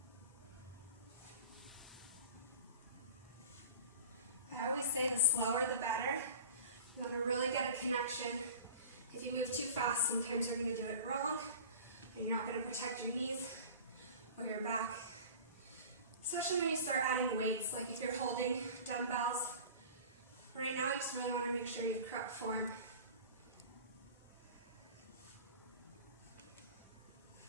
I always say the slower the better. You want to really get a connection. If you move too fast, sometimes you're going to do it wrong, and you're not going to protect your knees or your back. Especially when you start adding weights, like if you're holding dumbbells. Right now, you just really want to make sure you have correct form.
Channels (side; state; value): both; inverted; correlation -0.40